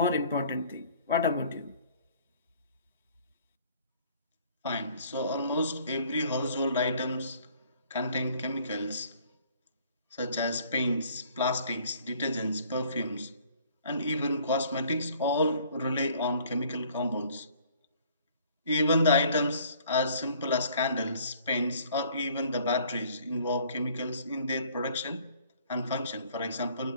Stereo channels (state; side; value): inverted; both; correlation -0.57